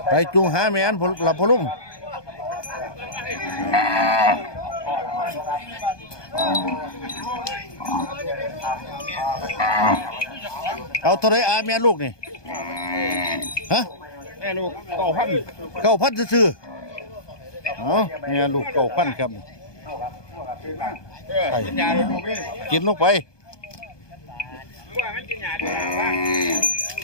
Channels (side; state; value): right; late; 1.2 ms